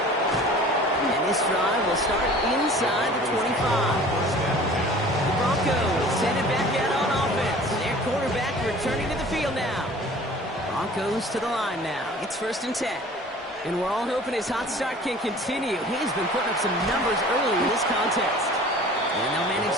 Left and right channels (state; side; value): normal; both; correlation 0.46